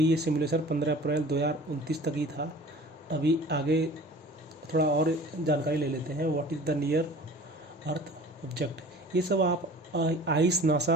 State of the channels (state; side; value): normal; both; correlation 0.44